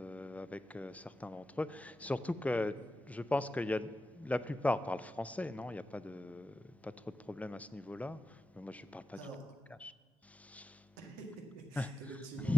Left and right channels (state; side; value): normal; both; correlation 0.92